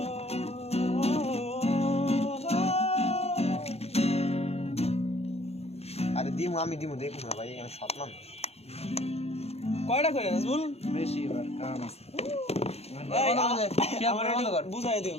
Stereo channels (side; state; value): right; late; 0.30 ms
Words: আরে আমি দিমু দেখুন না ভাই, আমি সৎ মানুষ। কয়টা করে নাজবুল? বেশি এবার কারণ আছে। বুঝাই দিও,